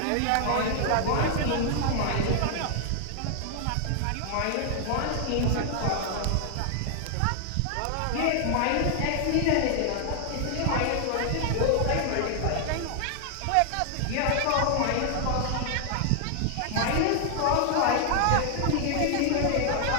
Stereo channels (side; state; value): both; different; correlation 0.00